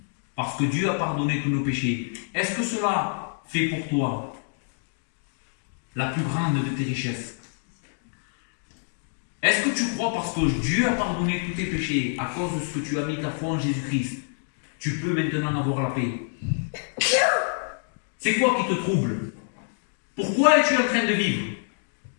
Parce que Dieu a pardonné tous nos péchés. Est-ce que cela fait pour toi la plus grande de tes richesses? Est-ce que tu crois parce que Dieu a pardonné tous tes péchés à cause de ce que tu as mis ta foi en Jésus-Christ, tu peux maintenant avoir la paix? C'est quoi qui te trouble? Pourquoi es-tu en train de vivre?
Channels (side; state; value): right; silent; digital silence